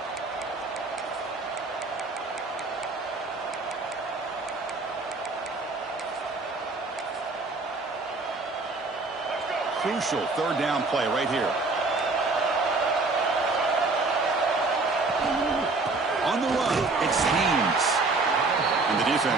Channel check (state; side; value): quieter; left; 3.6 dB